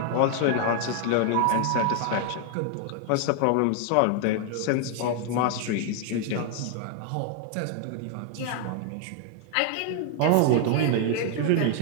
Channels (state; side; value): different; both; correlation 0.00